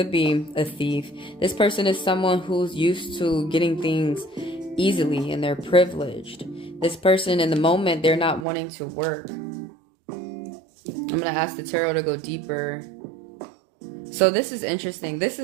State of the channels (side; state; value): left; drops out; at 8.5 s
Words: be a thief. This person is someone who's used to getting things easily and they're privileged. This person in the moment, they're not wanting to work. I'm going to ask the tarot to go deeper. So this is interesting. This